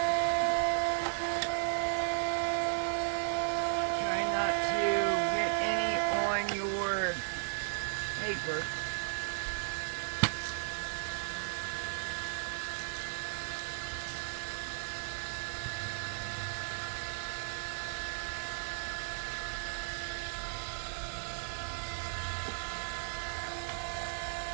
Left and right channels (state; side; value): silent; left; digital silence